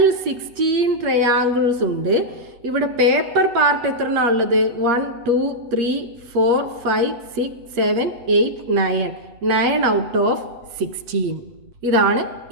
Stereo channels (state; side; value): late; left; 8.5 ms